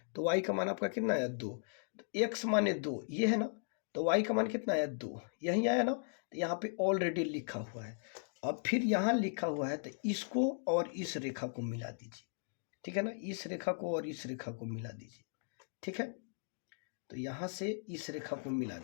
तो y का मान आपका कितना आया 2। तो x माने 2 ये है ना, तो y का मान कितना आया 2, यही आया ना। तो यहाँ पे ऑलरेडी लिखा हुआ है। अब फिर यहाँ लिखा हुआ है तो इसको और इस रेखा को मिला दीजिए, ठीक है ना, इस रेखा को और इस रेखा को मिला दीजिए, ठीक है। तो यहाँ से इस रेखा को मिला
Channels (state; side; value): silent; right; digital silence